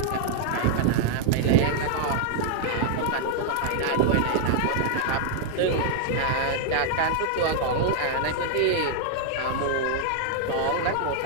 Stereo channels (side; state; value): both; different; correlation 0.00